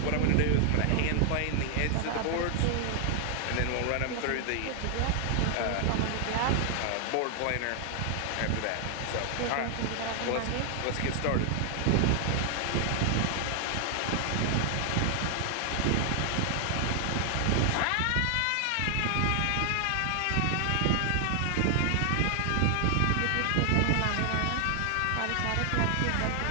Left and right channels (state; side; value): different; both; correlation 0.00